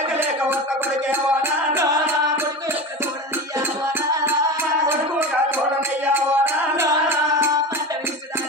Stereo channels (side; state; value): both; normal; correlation 0.27